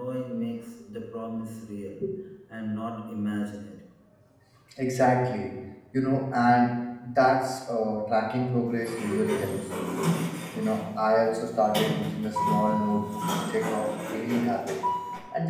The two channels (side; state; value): both; identical; correlation 1.00